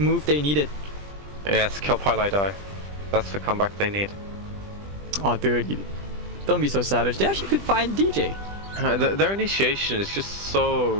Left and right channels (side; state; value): left; late; 20 ms